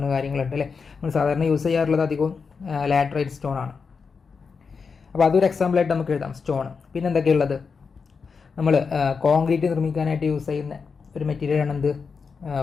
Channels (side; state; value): right; quieter; 5.3 dB